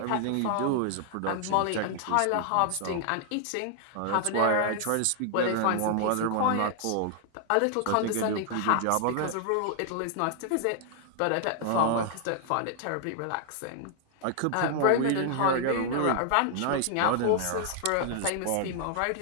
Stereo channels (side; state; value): both; different; correlation 0.00